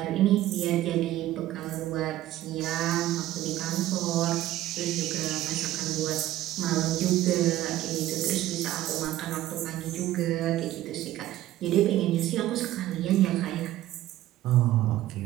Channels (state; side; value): quieter; left; 14.4 dB